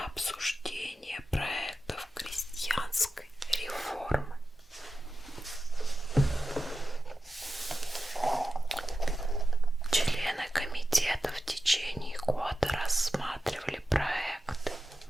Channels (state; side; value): normal; both; correlation 0.92